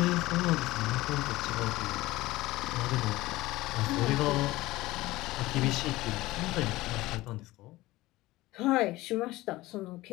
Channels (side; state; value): right; quieter; 18.5 dB